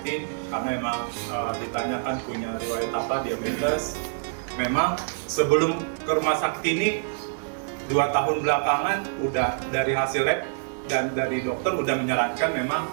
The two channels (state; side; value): silent; left; 61 dB below the other